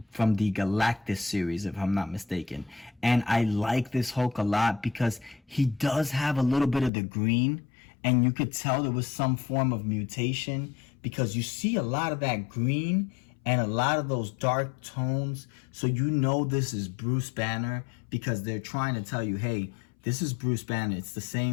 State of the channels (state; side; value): drops out; right; at 6.9 s